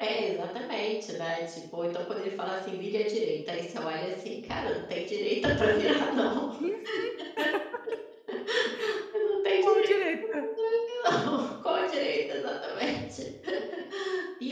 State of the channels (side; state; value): both; identical; correlation 1.00